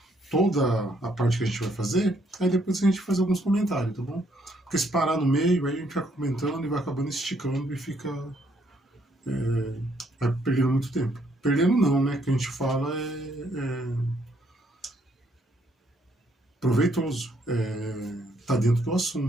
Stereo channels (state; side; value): normal; both; correlation 0.70